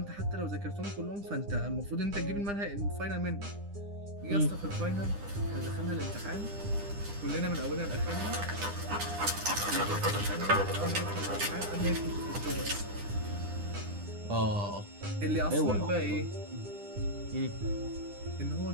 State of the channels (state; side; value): late; left; 9.9 ms